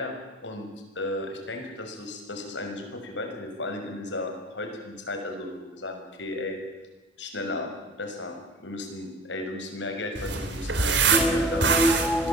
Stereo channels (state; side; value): normal; both; correlation 0.40